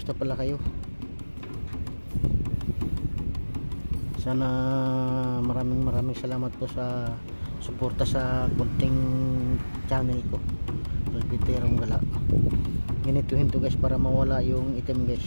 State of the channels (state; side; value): inverted; both; correlation -1.00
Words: pala kayo? Sana maraming salamat po sa suporta sa kunting channel ko, Albiterong Gala. Ganituhin to guys para mawala yung item